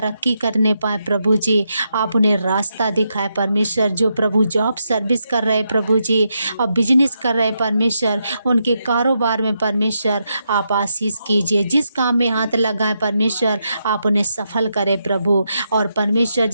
करने पाए प्रभु जी। आप उन्हें रास्ता दिखाए परमेश्वर, जो प्रभु जॉब सर्विस कर रहे प्रभु जी और बिजनेस कर रहे परमेश्वर, उनके कारोबार में परमेश्वर आप आशीष कीजिए। जिस काम में हाथ लगाए परमेश्वर आप उन्हें सफल करें प्रभु। और परमेश्वर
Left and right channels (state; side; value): inverted; both; correlation -0.83